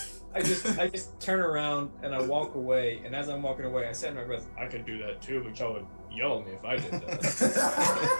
I just turn around and I walk away, and as I'm walking away, I say in my breath, I could do that too, but y'all would yell at me if I did that.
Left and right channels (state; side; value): inverted; both; correlation -1.00